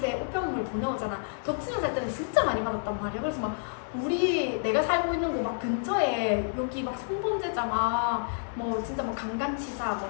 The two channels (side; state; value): right; silent; digital silence